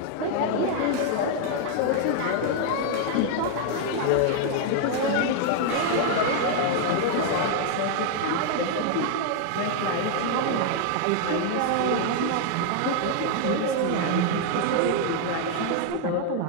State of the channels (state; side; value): different; both; correlation 0.00